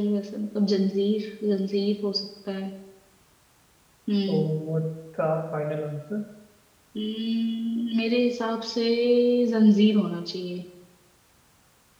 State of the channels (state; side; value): identical; both; correlation 1.00